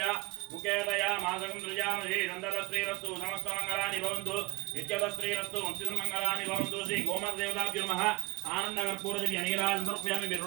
ముఖేతయా మాసకం దృజామహే నందరశ్రీరస్తు సమస్త మంగళాని భవంతు నిత్యత శ్రీరస్తు వంశిత మంగళాని భవంతు. శ్రీ గోమాత దేవతాభ్యో నమః. ఆనంద కర్పూర దివ్య నీరాజనం సమర్పయామి. మీరు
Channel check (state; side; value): quieter; left; 24.8 dB